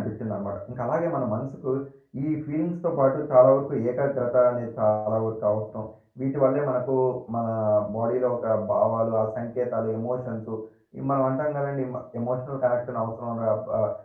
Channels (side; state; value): both; identical; correlation 1.00